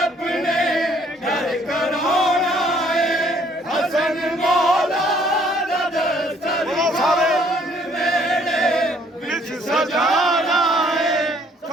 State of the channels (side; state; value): both; normal; correlation 0.62